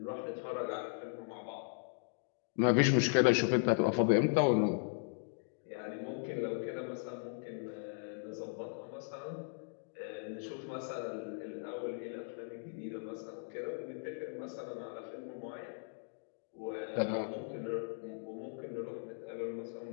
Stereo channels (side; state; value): right; silent; digital silence